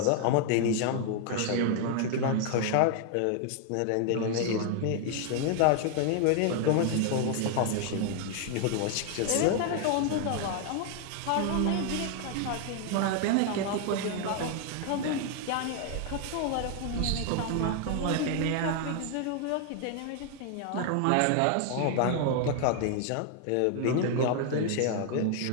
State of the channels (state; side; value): different; both; correlation 0.00